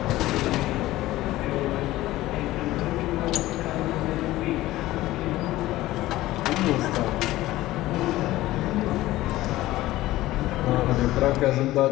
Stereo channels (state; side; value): quieter; right; 16.6 dB